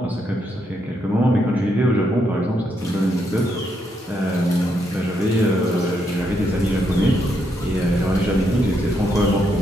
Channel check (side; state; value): both; normal; correlation 0.78